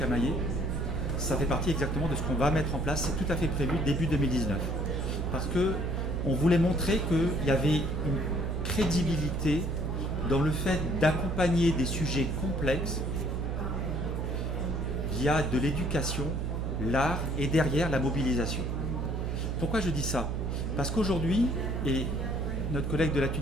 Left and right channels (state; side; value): noise; right; hum, 1 dB below the sound